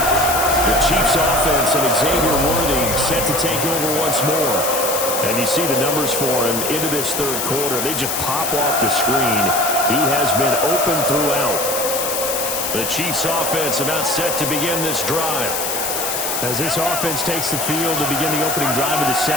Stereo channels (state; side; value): noise; left; hiss, 2 dB below the sound